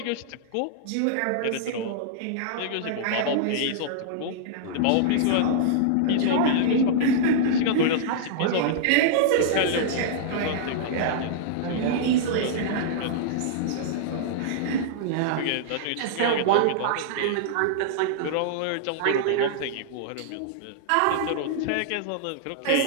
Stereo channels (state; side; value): different; both; correlation -0.02